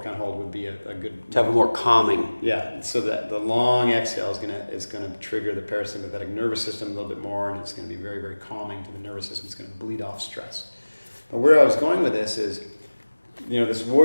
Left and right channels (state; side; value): inverted; both; correlation -1.00